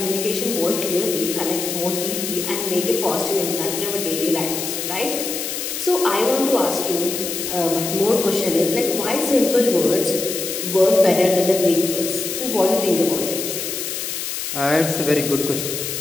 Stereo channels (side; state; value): left; noise; hiss, 4 dB below the sound